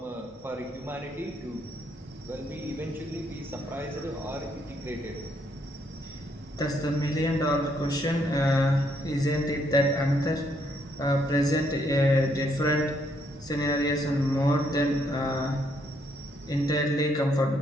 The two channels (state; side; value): normal; both; correlation 0.72